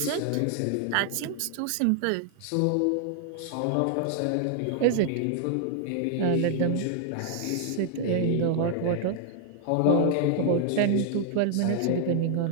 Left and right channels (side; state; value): both; different; correlation 0.00